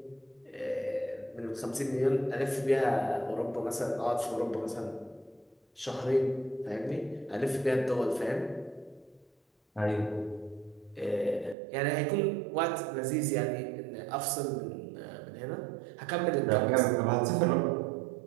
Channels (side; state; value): left; drops out; at 11.6 s